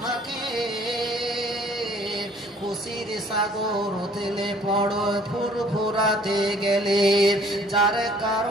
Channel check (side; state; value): both; normal; correlation 0.56